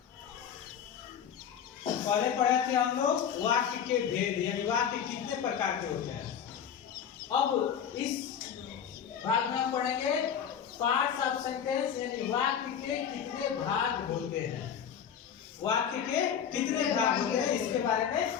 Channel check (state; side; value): quieter; right; 8.2 dB